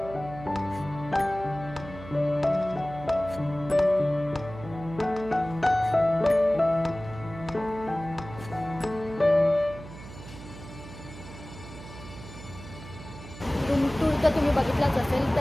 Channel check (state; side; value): noise; right; hum, 15 dB below the sound